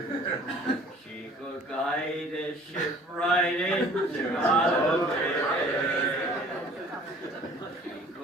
She could guide a ship right into Galway. She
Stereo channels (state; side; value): normal; both; correlation 0.51